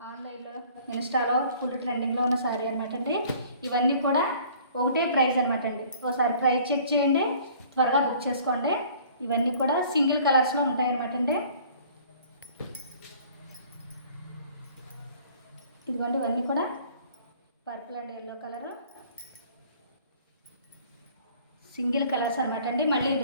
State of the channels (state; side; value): inverted; both; correlation -0.52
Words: ఆన్లైన్లో ఇన్స్టాలో ఫుల్ ట్రెండింగ్లో ఉన్న శారీ అనమాట అండి. ఇవన్నీ కూడా ఒకటే ప్రైస్ అనమాట అండి. ఒకసారి ప్రైస్ చెక్ చేయండి, త్వరగా బుక్ చేసుకోండి. ఇవన్నీ కూడా సింగిల్ కలర్స్లో ఉంటాయన్నమాట అండి. ఇదిగోండి, ఇవన్నీ కూడా purple and yellow colour single colours అనమాట అండి. మళ్ళీ